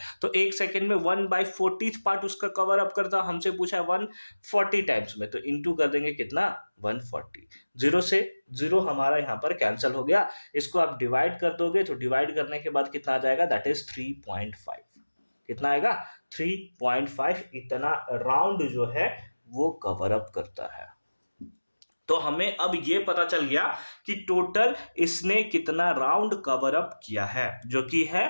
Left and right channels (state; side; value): inverted; both; correlation -1.00